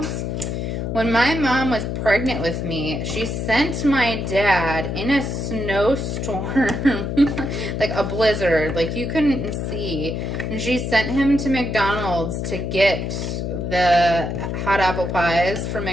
When my mom was pregnant with me, she sent my dad in a snowstorm, like a blizzard, like you couldn't see. And she sent him to McDonald's to get the hot apple pies from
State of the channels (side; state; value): left; noise; hum, 3 dB below the sound